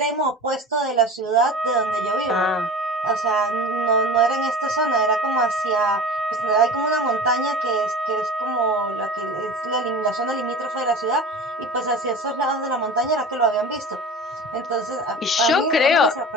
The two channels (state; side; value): normal; both; correlation 0.36